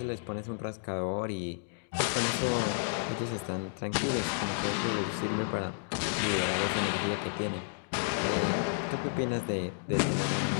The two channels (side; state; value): right; silent; digital silence